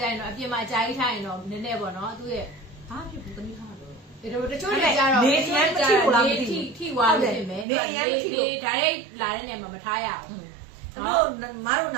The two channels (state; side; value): drops out; left; at 7.7 s